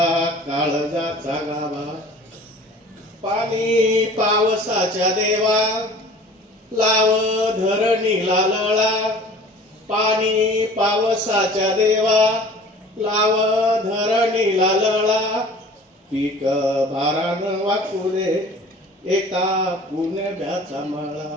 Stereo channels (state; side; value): normal; both; correlation 0.46